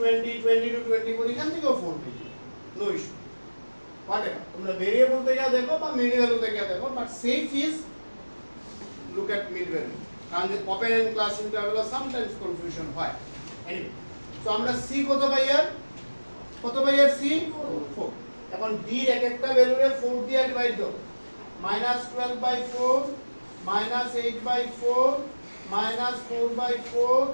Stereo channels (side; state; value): both; inverted; correlation -1.00